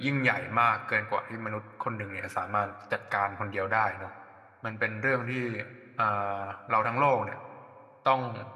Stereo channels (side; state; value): both; identical; correlation 1.00